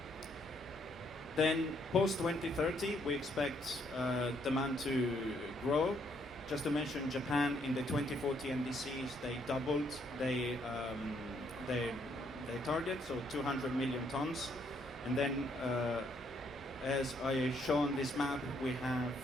Then post-2030, we expect demand to grow. Just to mention, Japan in the 2040 NDCs, they doubled their target, so 200 million tons. And then, as I show on this map, we have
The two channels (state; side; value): normal; both; correlation 0.70